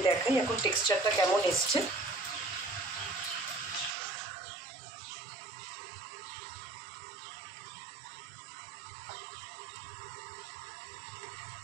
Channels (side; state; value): left; drops out; at 3.9 s